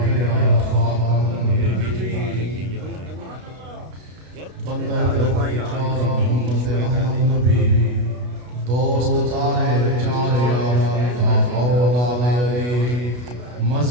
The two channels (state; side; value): late; left; 33 ms